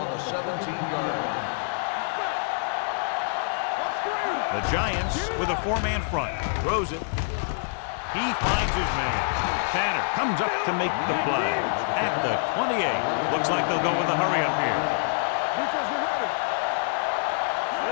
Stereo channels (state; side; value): silent; right; 61 dB below the other